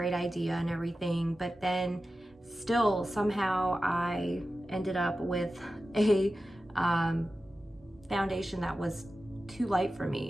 idea and everything, but then still somehow I ended up with a foundation that was too light for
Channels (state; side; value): normal; both; correlation 0.94